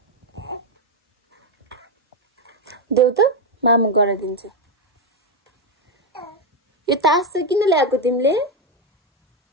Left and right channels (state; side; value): normal; both; correlation 0.06